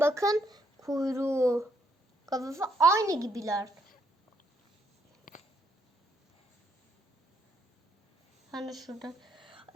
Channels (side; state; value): both; normal; correlation 0.73